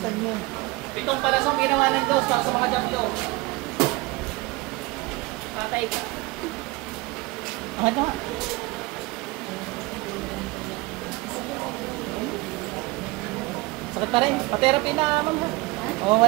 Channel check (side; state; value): left; quieter; 22.4 dB